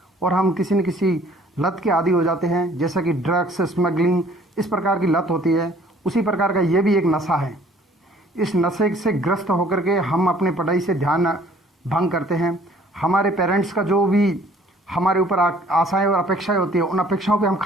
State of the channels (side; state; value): both; normal; correlation 0.57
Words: और हम किसी न किसी लत के आदी हो जाते हैं, जैसा कि ड्रग्स, स्मगलिंग, इस प्रकार की लत होती है। उसी प्रकार का ये भी एक नशा है। इस नशे से ग्रस्त होकर के हम अपने पढ़ाई से ध्यान भंग करते हैं। हमारे पेरेंट्स का जो भी हमारे ऊपर आशाएं और अपेक्षाएं होती है, उन अपेक्षाओं पे हम